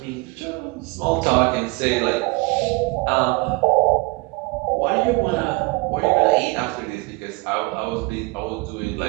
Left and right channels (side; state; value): left; quieter; 25.4 dB